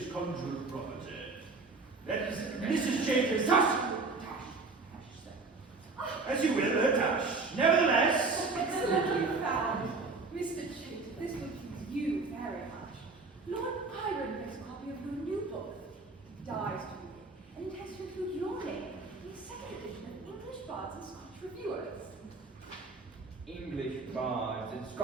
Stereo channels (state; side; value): quieter; left; 3.9 dB